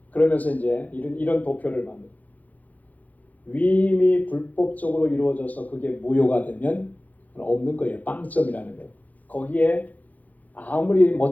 그러면서 이제 이런 도표를 만듭니다. 위임이 불법적으로 이루어져서 그게 무효가 되면 없는 거예요. 빵점이라는 거예요. 거기에 아무리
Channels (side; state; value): right; late; 0.078 ms